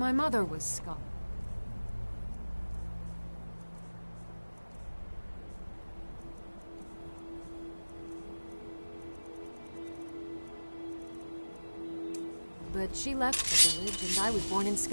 mother was Scot. But she left the village, and I was born in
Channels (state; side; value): inverted; both; correlation -1.00